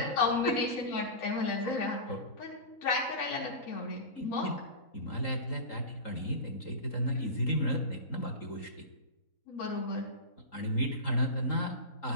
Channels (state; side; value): late; right; 3.8 ms